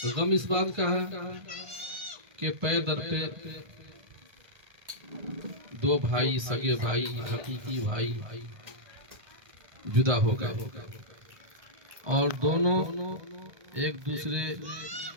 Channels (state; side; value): late; left; 1.3 ms